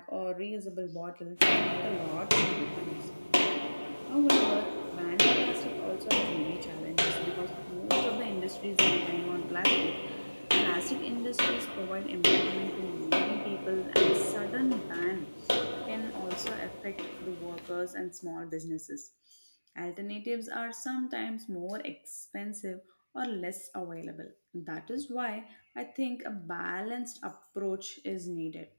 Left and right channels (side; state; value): both; inverted; correlation -1.00